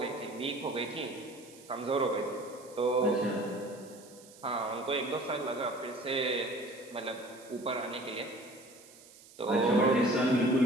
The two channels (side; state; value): right; noise; hiss, 22 dB below the sound